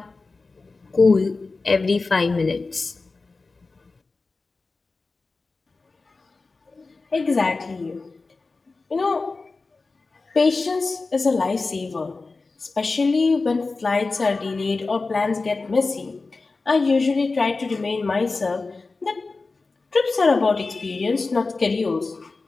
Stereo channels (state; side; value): quieter; right; 3.8 dB